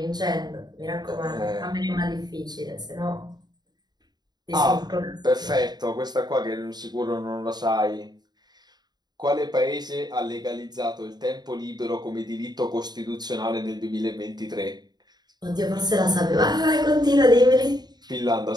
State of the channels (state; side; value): late; left; 0.20 ms